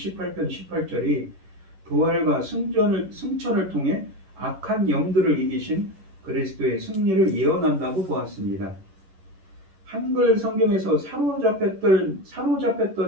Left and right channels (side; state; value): left; late; 11 ms